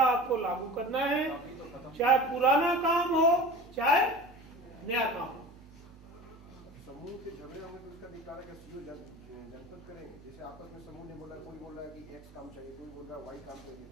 आपको लागू करना है, चाहे पुराना काम हो चाहे नया काम हो। समूह के झगड़े होंगे तो उसका निकाला का सीओ जनपद करेंगे। जैसे आपस में समूह ने बोला, कोई बोल रहा है कि X काम चाहिए, कोई बोल रहा है Y काम चाहिए,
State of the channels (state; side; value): normal; both; correlation 0.36